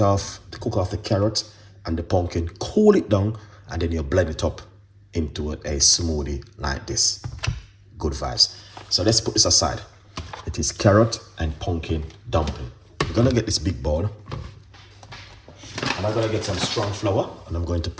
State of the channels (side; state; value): both; identical; correlation 1.00